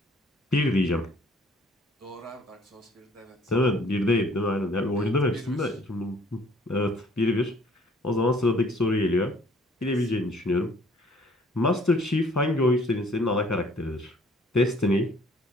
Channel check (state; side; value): normal; both; correlation 0.58